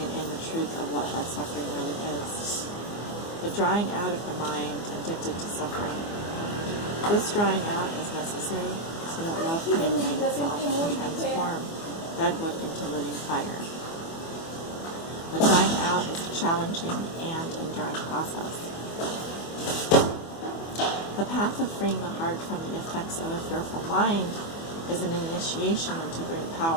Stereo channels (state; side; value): late; right; 24 ms